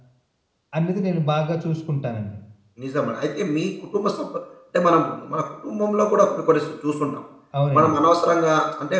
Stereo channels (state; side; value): identical; both; correlation 1.00